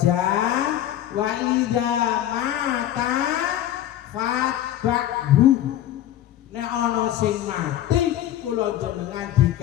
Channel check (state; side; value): quieter; right; 12.3 dB